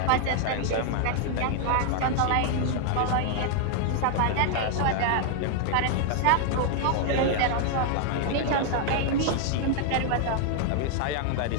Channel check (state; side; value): different; both; correlation 0.00